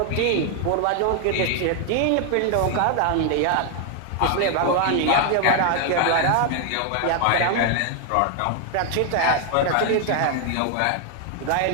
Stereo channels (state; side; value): different; both; correlation 0.00